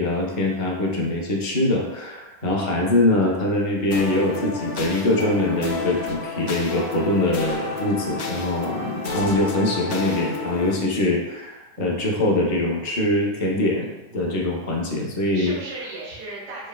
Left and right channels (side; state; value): left; late; 9.4 ms